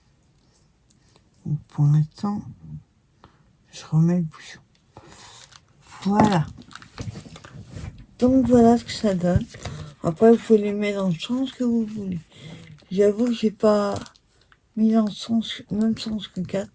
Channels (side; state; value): both; identical; correlation 1.00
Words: Donc pour l'instant, je remets le bouchon. Voilà. Donc voilà ce que ça donne. Après, vous pouvez les mettre dans le sens que vous voulez. J'avoue que j'ai pas mis dans le sens, même sens que 4.